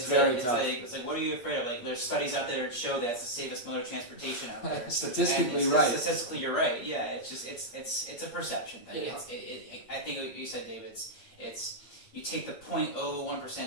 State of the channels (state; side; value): late; right; 8.5 ms